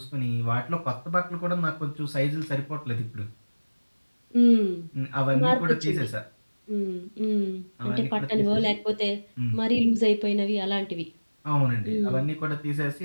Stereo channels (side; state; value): both; inverted; correlation -1.00